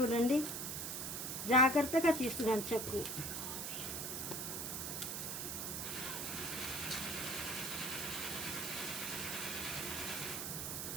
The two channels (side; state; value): right; noise; hiss, 3 dB below the sound